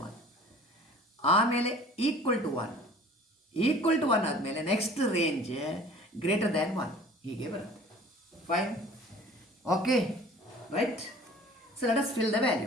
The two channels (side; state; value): both; normal; correlation 0.46